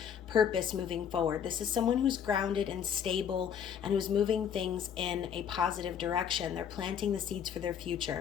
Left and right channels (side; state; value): right; quieter; 8.3 dB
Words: purpose moving forward. This is someone who's grounded and stable and who's moving things in a positive direction. They're planting the seeds for their